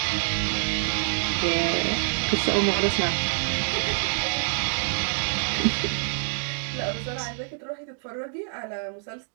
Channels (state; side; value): silent; left; digital silence